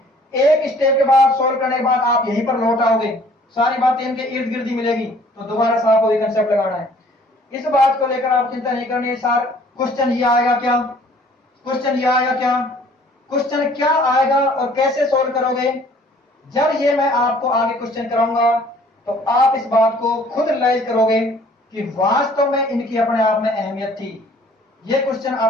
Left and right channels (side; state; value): both; normal; correlation 0.56